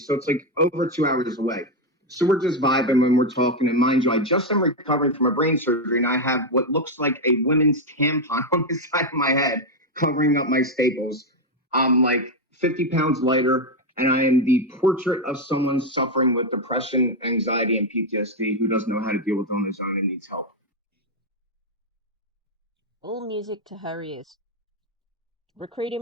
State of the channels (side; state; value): both; normal; correlation 0.04